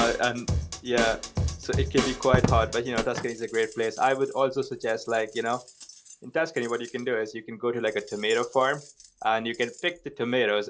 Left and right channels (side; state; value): both; identical; correlation 1.00